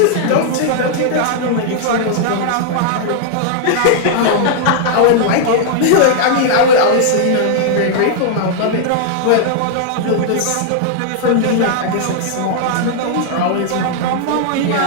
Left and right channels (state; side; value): different; both; correlation -0.01